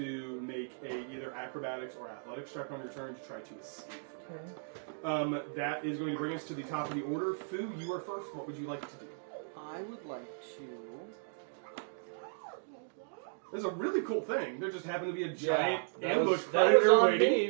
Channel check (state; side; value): silent; left; digital silence